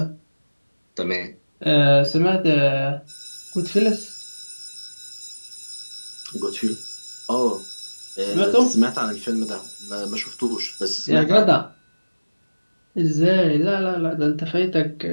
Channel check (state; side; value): inverted; both; correlation -1.00